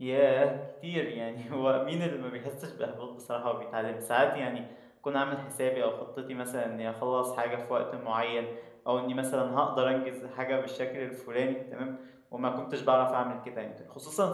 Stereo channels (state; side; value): identical; both; correlation 1.00